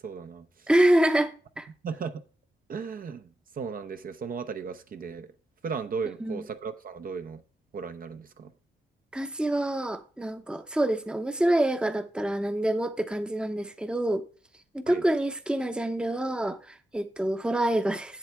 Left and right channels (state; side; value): normal; both; correlation 0.91